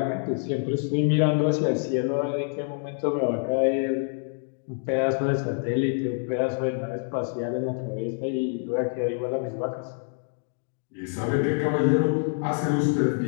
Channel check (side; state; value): right; silent; 61 dB below the other